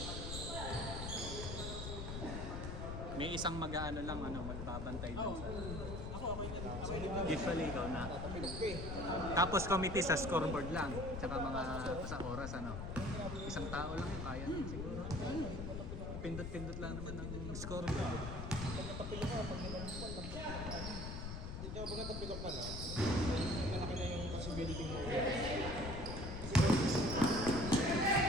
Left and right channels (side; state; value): left; noise; rumble, 5 dB below the sound